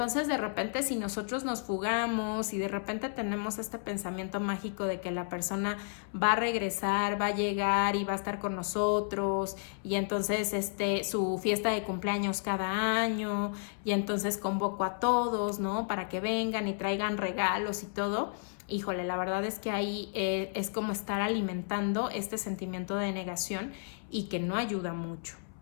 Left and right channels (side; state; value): right; silent; 56 dB below the other